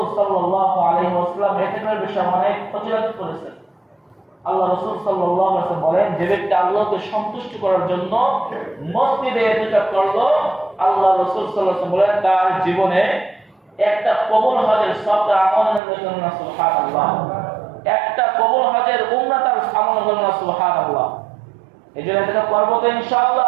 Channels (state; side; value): drops out; left; at 15.8 s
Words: সাল্লাল্লাহু আলাইহি ওয়াসাল্লাম ইতিকাফের বিষয়ে অনেক ফজিলত করেছেন। আল্লাহ রাসূল সাল্লাল্লাহু আলাইহি ওয়াসাল্লাম বলেন, যে ব্যক্তি আল্লাহকে সন্তুষ্ট করার জন্য মসজিদে ইতিকাফ করলো, আল্লাহ রাসূল সাল্লাল্লাহু আলাইহি ওয়াসাল্লাম বলেন তার জীবনে একটা কবুল হজের সওয়াব আমলের জন্য সুবহানাল্লাহ, একটা কবুল হজের উমরা তার আমলের জন্য সুবহানাল্লাহ। এজন্য ইতিকাফ করব তো